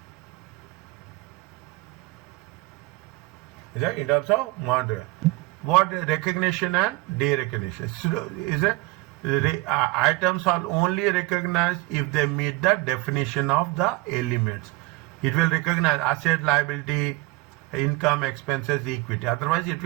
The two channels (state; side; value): quieter; left; 20.8 dB